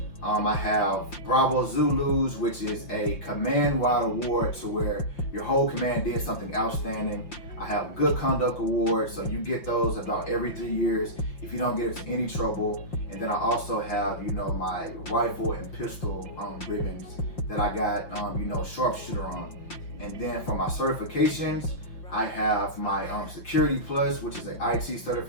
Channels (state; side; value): late; right; 5.8 ms